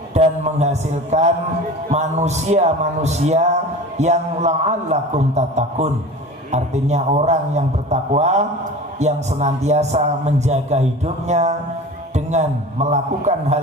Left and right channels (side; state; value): both; normal; correlation 0.36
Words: dan menghasilkan manusia-manusia yang la'allakum tattaqun. Artinya orang yang bertakwa, yang senantiasa menjaga hidupnya dengan melakukan